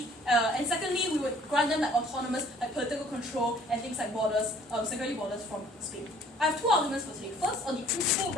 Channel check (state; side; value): normal; both; correlation 0.56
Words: and secondly, we would grant them like autonomous, like political control and things like borders, security borders from Spain. I have two arguments for today. First, on the principal